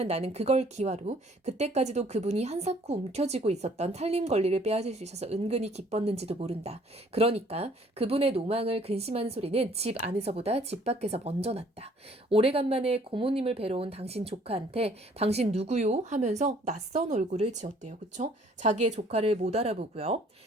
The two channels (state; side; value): normal; both; correlation 0.59